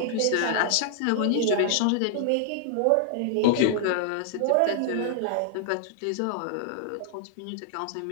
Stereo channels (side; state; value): both; different; correlation -0.01